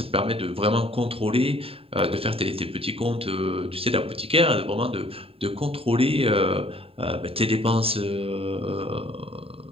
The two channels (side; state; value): left; late; 0.27 ms